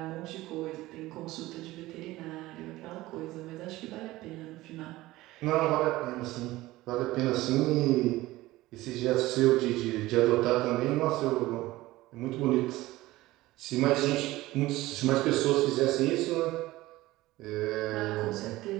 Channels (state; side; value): quieter; left; 17.9 dB